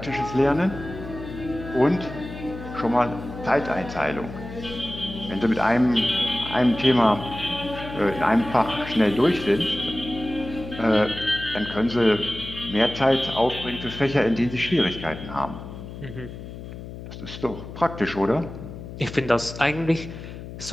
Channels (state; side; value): noise; left; hum, 11 dB below the sound